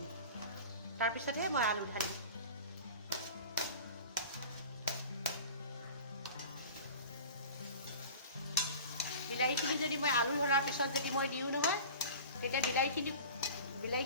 তাৰপিছতহে মই আলু ঢালিম। বিলাহীখিনি যদি মই আলু ধৰাৰ পিছত যদি মই দিওঁ নহয়, তেতিয়া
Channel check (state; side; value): inverted; both; correlation -0.38